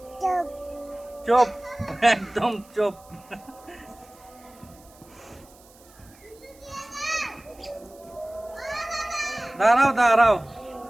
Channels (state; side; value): noise; right; hiss, 26 dB below the sound